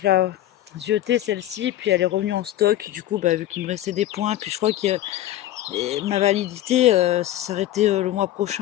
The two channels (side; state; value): right; quieter; 13.7 dB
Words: la ziotais celle-ci, puis elle est revenue en stock. Du coup, vu qu'il me restait des points, puis je crois que ma validité s'arrêtait le mois